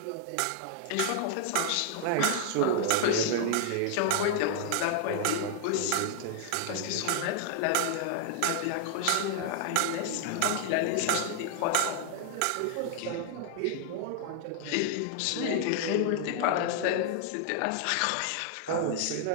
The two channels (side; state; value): both; different; correlation 0.00